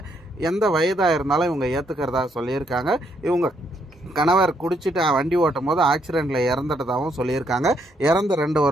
எந்த வயதாக இருந்தாலும் இவங்க ஏற்றுக்கிறதா சொல்லியிருக்காங்க. இவங்க கணவர் குடிச்சிட்டு வண்டி ஓட்டும் போது ஆக்சிடெண்ட்டில் இறந்துட்டதாகவும் சொல்லியிருக்காங்க. இறந்து 2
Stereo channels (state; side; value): normal; both; correlation 0.73